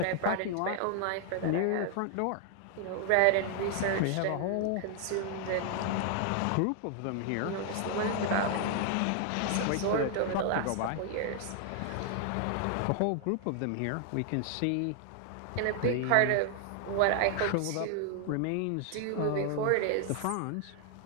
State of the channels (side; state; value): both; different; correlation 0.00